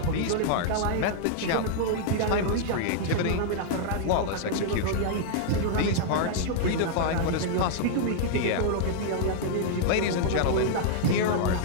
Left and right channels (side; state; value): both; different; correlation -0.01